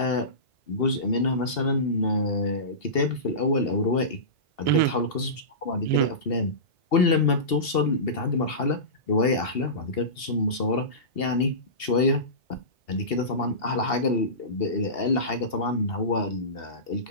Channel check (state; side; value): late; right; 2.7 ms